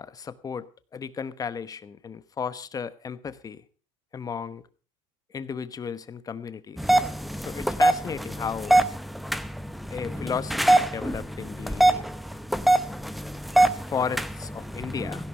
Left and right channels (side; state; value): both; normal; correlation 0.88